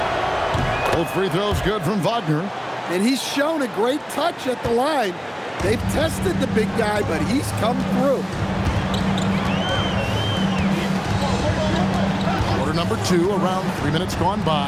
Both free throws good from Wagner. And he's shown a great touch at the line. They've tested the big guy, but he's come through. Number 2, around 3 minutes gone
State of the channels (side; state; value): both; identical; correlation 1.00